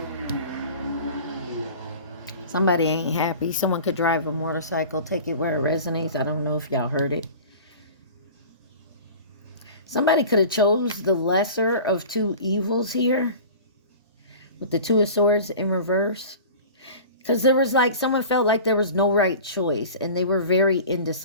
Somebody ain't happy. Someone could drive a motorcycle, take it where it resonates. I don't know if y'all heard it. Somebody could have chose the lesser of 2 evils here with the 2 of Swords in reverse. Because there was like, someone felt like there was no right choice and they were very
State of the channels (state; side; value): inverted; both; correlation -0.39